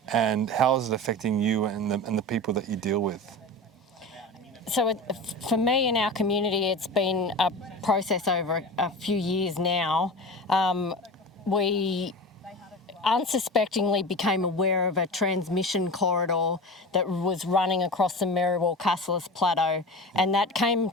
and how is it affecting you and the people that you deal with? So for me in our community, it's been a process over a few years now. We unsuspectingly became aware of a transmission corridor that was running across the Merriwell-Cassilis Plateau, and that came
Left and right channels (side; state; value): both; normal; correlation 0.30